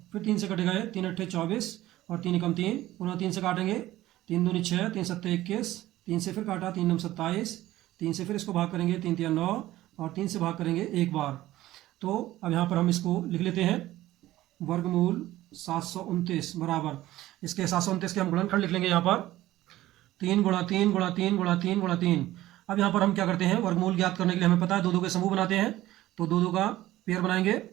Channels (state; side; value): quieter; left; 15.6 dB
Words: फिर 3 से कटेगा ये, 3 अट्ठे 24 और 3 एकम 3, पुनः 3 से काटेंगे। 3 दूनी 6, 3 सत्ते 21, 3 से फिर काटा, 3 नम 27, 3 से फिर इसको भाग करेंगे, 3 तिया 9 और 3 से भाग करेंगे एक बार। तो अब यहाँ पर हम इसको लिख लेते हैं, वर्गमूल 729 बराबर, इसके 729 के हम गुणनखंड लिख लेंगे यहाँ पर, 3 गुणा 3 गुणा 3 गुणा 3 गुणा 3। अब यहाँ पर हम क्या करते हैं, वर्गमूल ज्ञात करने के लिए हमें पता है 2 के समूह बनाते हैं, तो 2 का पेयर बनाएंगे,